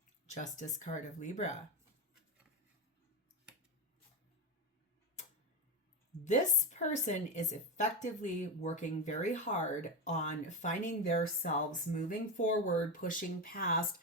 Justice card of Libra. This person is effectively working very hard on finding themselves, moving forward, pushing past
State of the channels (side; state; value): both; normal; correlation 0.16